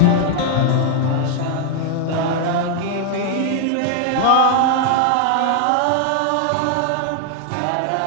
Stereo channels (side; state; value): both; different; correlation 0.00